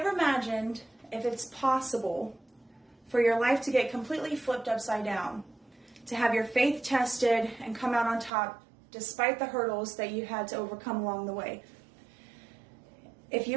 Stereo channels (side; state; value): left; drops out; at 8.3 s